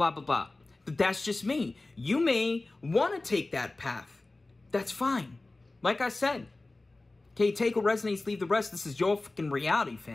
blah, blah. But that's just me. You may want to take that path. That's fine. Like I said, okay, take what resonates, leave the rest. This is your fucking reality,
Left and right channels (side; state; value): right; quieter; 3.1 dB